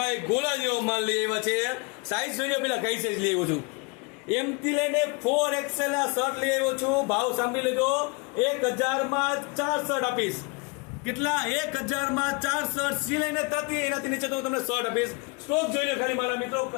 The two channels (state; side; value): quieter; right; 30.0 dB